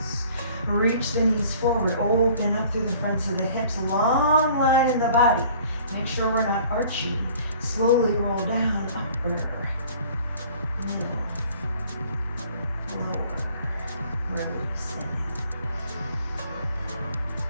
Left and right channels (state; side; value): inverted; both; correlation -0.52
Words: Reach the knees forward, open up through the fronts of the hips, long line in the body. Make sure we're not arching. Slowly roll down, upper, middle, lower, releasing.